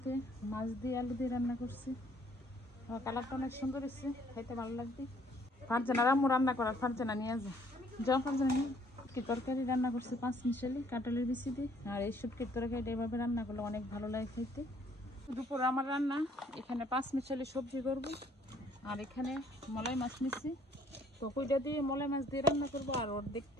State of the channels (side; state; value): both; normal; correlation 0.61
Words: মাছ দিয়ে আলু দিয়ে রান্না করছে, কালারটা অনেক সুন্দর এসছে, খাইতে ভালো লাগবে। ফারজানার আম্মু রান্না করার, ফারজানা নিয়ে যাও ফারজানা নিয়ে। কি তরকারি রান্না করছে পাঁচমিশালি কাঁঠালের বিচি দিয়ে, আর এই শুটকির তরকারিটা এভাবে রান্না করলে অনেক ভালো লাগে খাইতে। দুপুর আমার রান্না, এখানে পাঁচমিশালি সবজি করব, আর এখানে মলাই মাছ নিচ্ছি, তো কইটা দিয়ে মলাই মাছ দিয়ে রান্না করবো, আর ওর